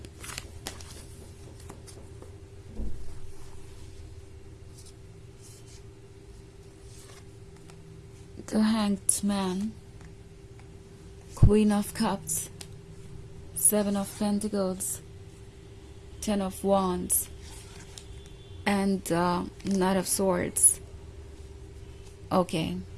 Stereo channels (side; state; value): both; identical; correlation 1.00